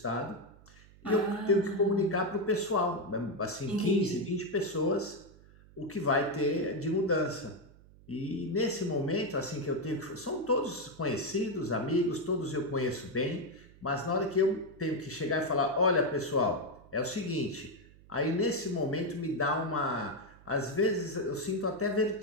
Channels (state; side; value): noise; right; hum, 24 dB below the sound